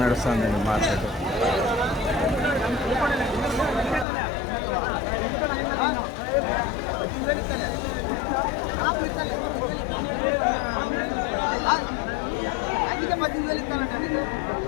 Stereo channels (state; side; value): drops out; right; at 4.0 s